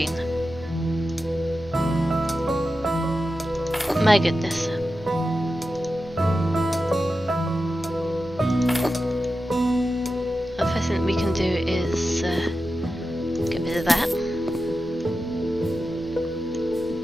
My goodness. The first thing we can do is get rid of that.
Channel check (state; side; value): normal; both; correlation 0.91